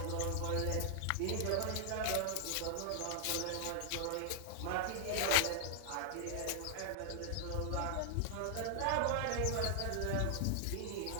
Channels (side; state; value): both; different; correlation 0.00